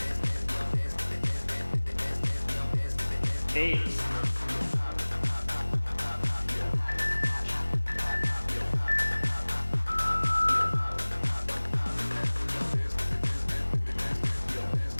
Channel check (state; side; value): inverted; both; correlation -1.00